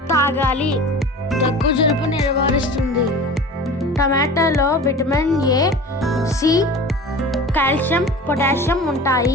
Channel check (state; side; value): normal; both; correlation 0.37